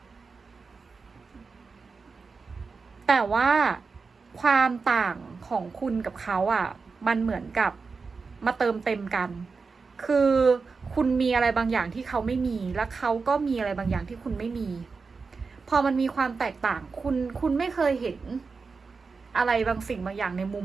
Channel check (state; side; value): quieter; left; 4.7 dB